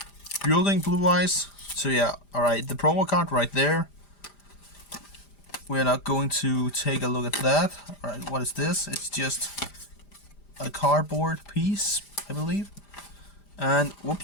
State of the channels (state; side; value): late; right; 5.0 ms